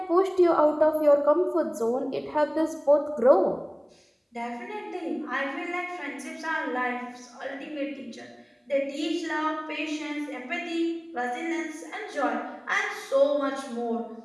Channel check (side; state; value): both; identical; correlation 1.00